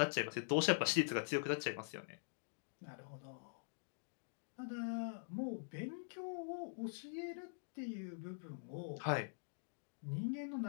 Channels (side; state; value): right; silent; digital silence